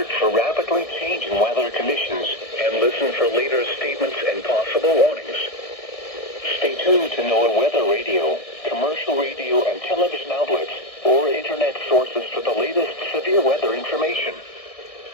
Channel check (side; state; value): right; late; 1.6 ms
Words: for rapidly changing weather conditions and listen for later statements and possible warnings. Stay tuned to NOAA weather radio, commercial radio and television outlets, or internet sources for the latest severe weather information.